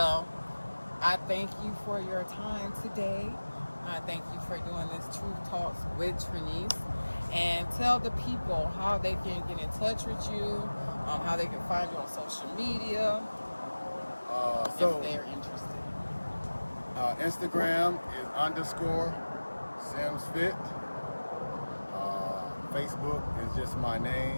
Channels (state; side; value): inverted; both; correlation -1.00